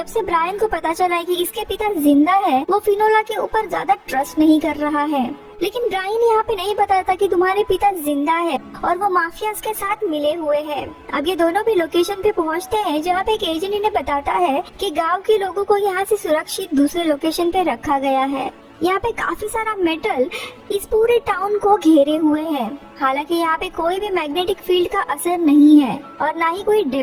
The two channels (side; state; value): both; identical; correlation 1.00